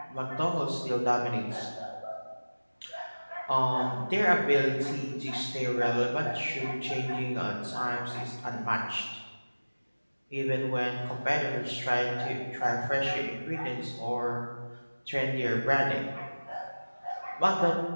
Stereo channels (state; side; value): inverted; both; correlation -1.00